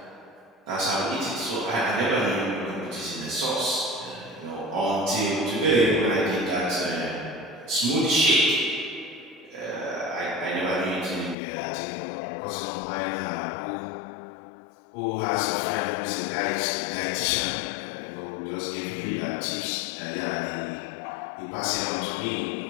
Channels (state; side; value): drops out; right; at 11.4 s